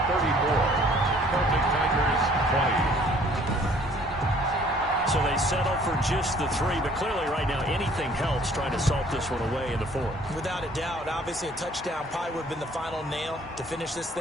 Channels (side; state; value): both; normal; correlation 0.57